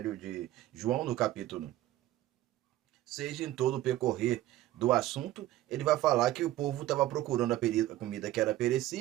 de João, no capítulo 6, em todo o percorrer do assunto, ele vai falar que o povo estava procurando a comida que era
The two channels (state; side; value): quieter; left; 14.6 dB